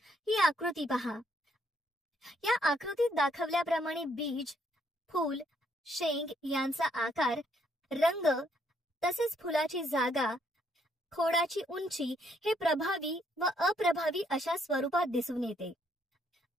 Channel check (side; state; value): both; normal; correlation 0.71